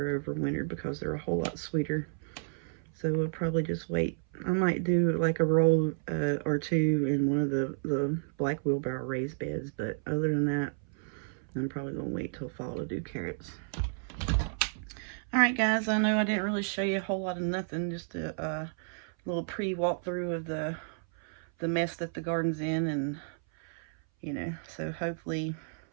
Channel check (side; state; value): left; silent; 57 dB below the other